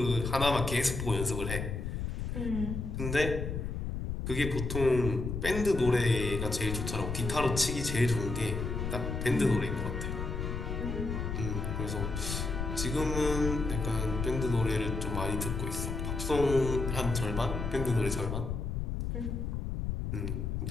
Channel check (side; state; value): left; noise; rumble, 3 dB below the sound